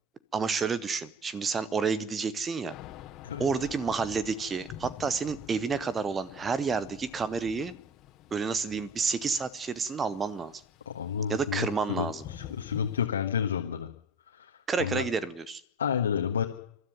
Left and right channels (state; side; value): normal; both; correlation 0.37